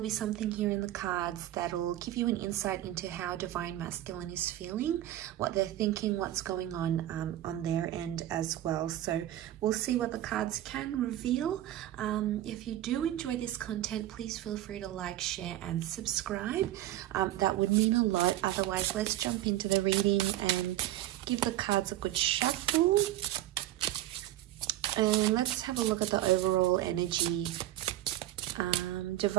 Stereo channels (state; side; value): quieter; left; 13.9 dB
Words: something here in the cards that'll give you an insight into how Divine Masculine is feeling, what they're thinking, what's going on their end as well. So we'll see what the cards can reveal. If you do enjoy this content, please feel free to like, share and subscribe. That would mean a lot. Otherwise, let's jump into the reading and give the cards a good shuffle. And let's have a look at the overall energy.